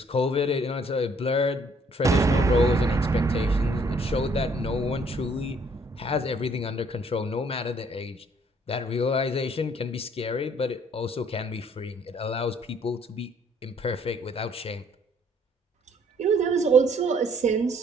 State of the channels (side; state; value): both; normal; correlation 0.63